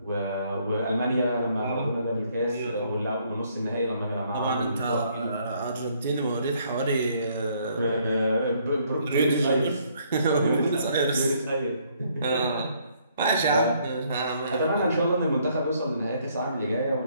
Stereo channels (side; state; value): both; inverted; correlation -0.67